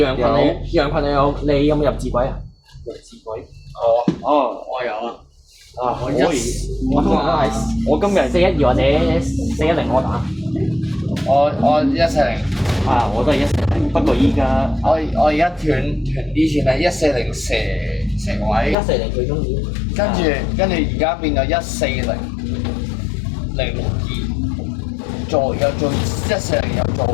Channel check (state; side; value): drops out; right; at 18.8 s